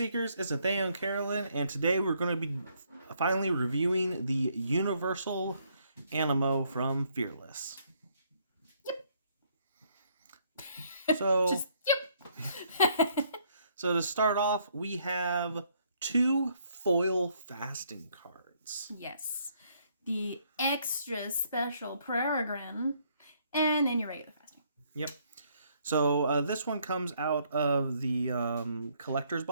it's Nathaniel and Carolyn, and today we're going to be finally reviewing the Universal Animo from Fearless. So, Just, yep. so to start off, we have two foil fasting cards. Yes. The extra special Peregrine, and then your regular fasting. Yep. So this one comes out of the collector's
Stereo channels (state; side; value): inverted; both; correlation -0.69